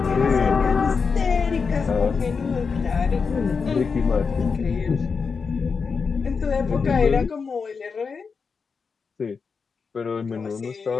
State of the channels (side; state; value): right; quieter; 5.3 dB